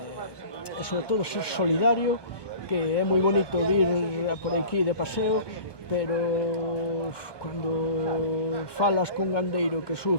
sobre todo ser solidario, que é moi bonito ir por aquí de paseo, pero cando falas con gandeiro que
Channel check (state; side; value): late; right; 1.2 ms